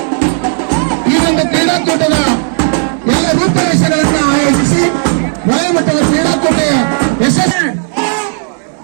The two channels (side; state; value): left; silent; 60 dB below the other